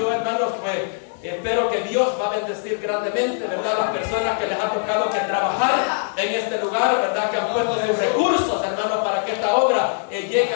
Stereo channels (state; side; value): silent; right; digital silence